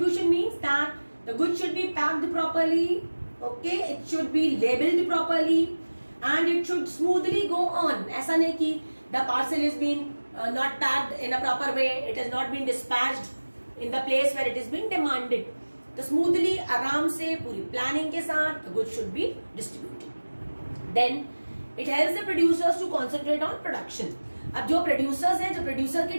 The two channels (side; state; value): both; inverted; correlation -1.00